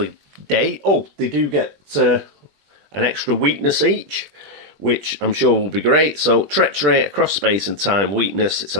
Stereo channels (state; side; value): late; left; 20 ms